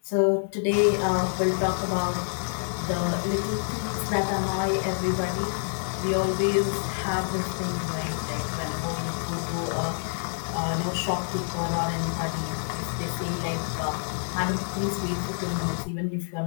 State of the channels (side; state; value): right; silent; digital silence